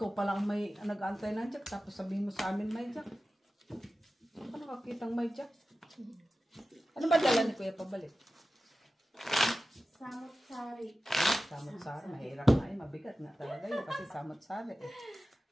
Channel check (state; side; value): normal; both; correlation 0.94